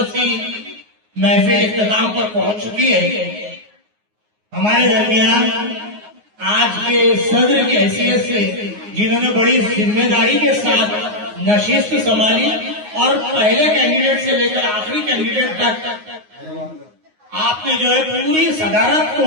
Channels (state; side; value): late; left; 9.5 ms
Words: محفل اختتام پر پہنچ چکی ہے. ہمارے درمیان آج کے صدر کی حیثیت سے جنہوں نے بڑی ذمہ داری کے ساتھ نشست سنبھالی اور پہلے کینڈیڈیٹ سے لے کر آخری کینڈیڈیٹ تک آپ نے جو ہے پوری صدارت